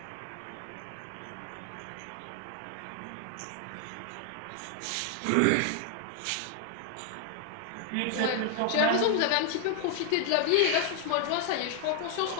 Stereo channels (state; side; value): different; both; correlation 0.00